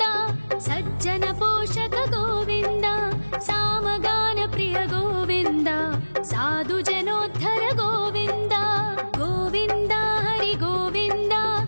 सज्जन पोषक गोविन्द सामगान प्रिय गोविन्द साधु जनोद्धर गोविन्द गोविन्द हरि गोविन्द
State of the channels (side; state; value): both; inverted; correlation -1.00